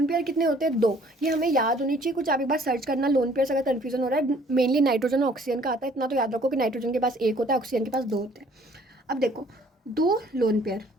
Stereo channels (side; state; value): both; normal; correlation 0.58